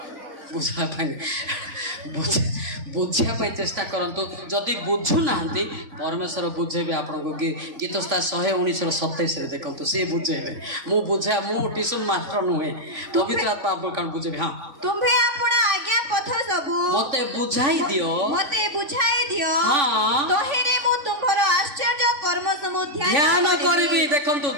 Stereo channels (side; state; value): left; late; 3.5 ms